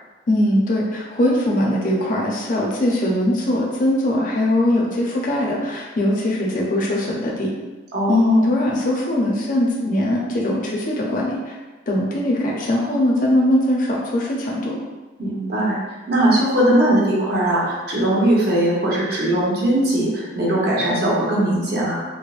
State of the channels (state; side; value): normal; both; correlation 0.61